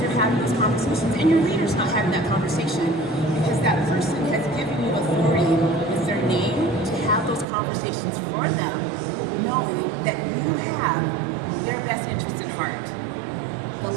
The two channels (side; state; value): left; drops out; at 7.5 s